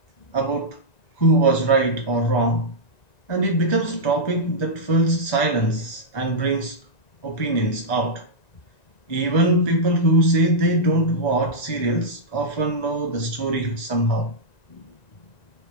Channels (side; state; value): right; late; 1.9 ms